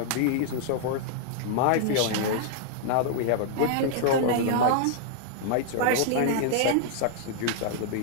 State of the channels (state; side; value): different; both; correlation -0.01